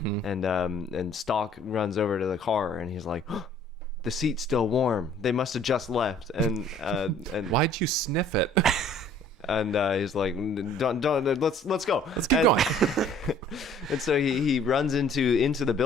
Stock runs over to the car and he's like, oh, the seat's still warm. They must have just left. And Why'd you sniff it? and he's like, don't let's go. Let's keep going. And so he runs into the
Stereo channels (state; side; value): normal; both; correlation 0.55